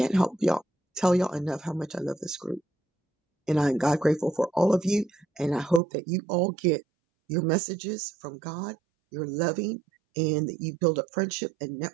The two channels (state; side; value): drops out; left; at 5.8 s